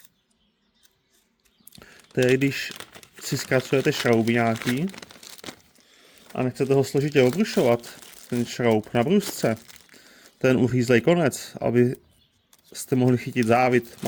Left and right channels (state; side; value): identical; both; correlation 1.00